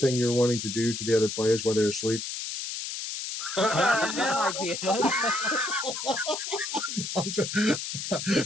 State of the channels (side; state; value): left; noise; hiss, 5 dB below the sound